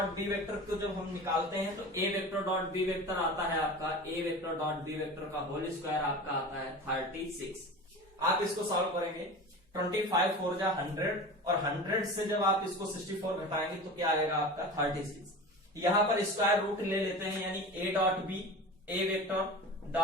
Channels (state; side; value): normal; both; correlation 0.33